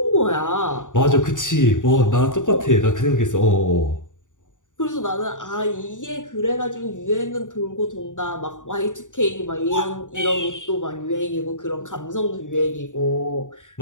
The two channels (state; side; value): late; right; 0.86 ms